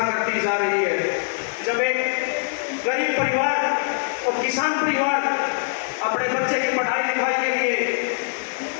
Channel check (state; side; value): silent; right; digital silence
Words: करती जा रही है। जब एक गरीब परिवार और किसान परिवार अपने बच्चे की पढ़ाई लिखाई के लिए